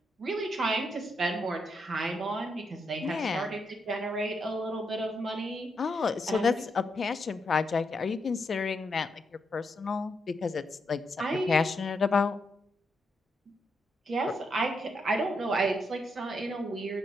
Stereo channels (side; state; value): both; normal; correlation 0.80